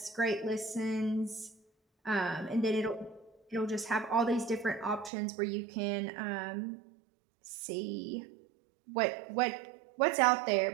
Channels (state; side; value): drops out; left; at 5.1 s